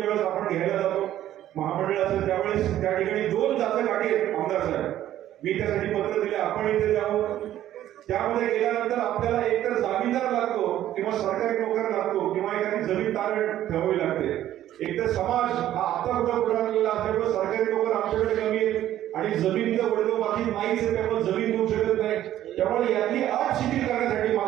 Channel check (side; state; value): left; quieter; 12.6 dB